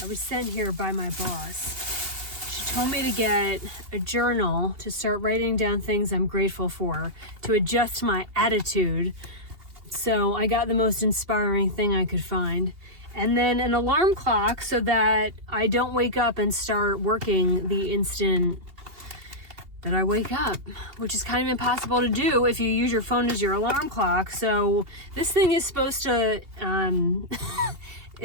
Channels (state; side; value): late; left; 2.8 ms